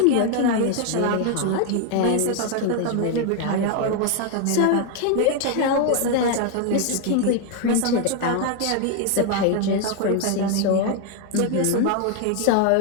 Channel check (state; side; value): different; both; correlation 0.01